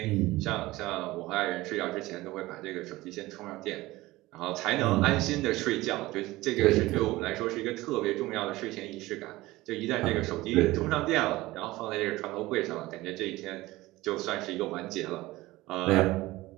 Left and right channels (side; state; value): left; quieter; 18.7 dB